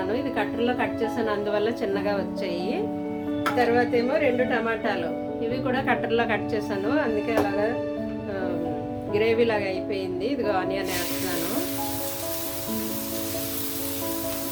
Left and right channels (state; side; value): identical; both; correlation 1.00